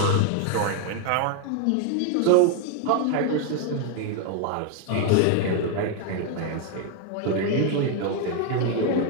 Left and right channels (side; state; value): both; different; correlation 0.01